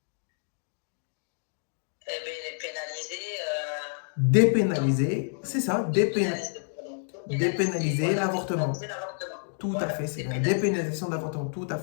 Eh bien, elle est pénalisée. Dépénaliser, c'est ça, dépénaliser l'avortement. Tout à fait, c'est la dépénalisation de l'avortement, tout à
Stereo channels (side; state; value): right; silent; digital silence